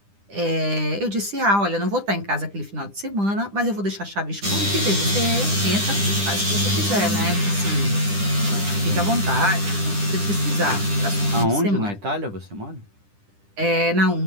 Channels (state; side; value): late; left; 10 ms